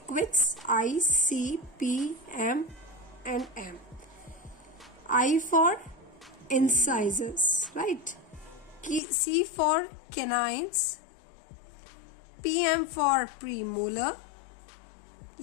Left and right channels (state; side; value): drops out; right; at 9.0 s